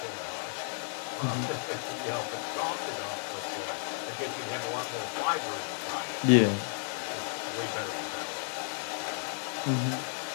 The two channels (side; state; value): right; silent; digital silence